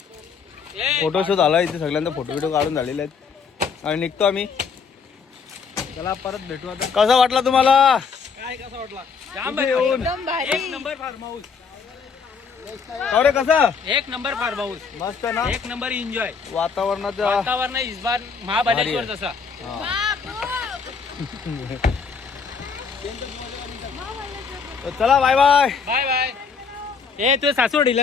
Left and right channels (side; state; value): right; quieter; 5.7 dB